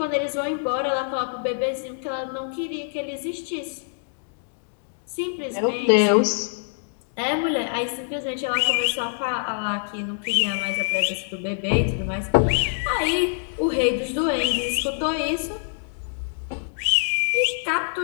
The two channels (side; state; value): right; silent; digital silence